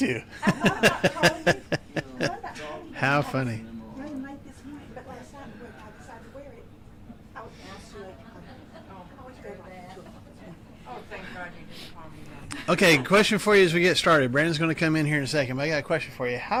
How funny. Running late this morning, but last night when I decided to wear it, I was absolutely, I always go like 2 o'clock. Oh, thank God you didn't call me then. Okay, question for you as we get started. Brandon's going to come in here in a second, but I got a question for you.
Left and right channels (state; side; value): identical; both; correlation 1.00